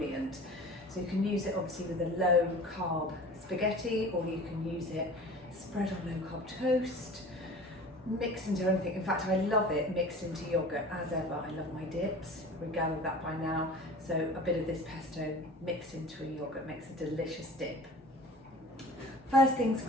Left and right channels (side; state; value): both; normal; correlation 0.40